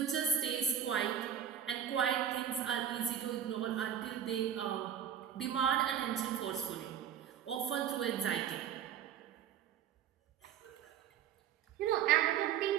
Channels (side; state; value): left; quieter; 9.2 dB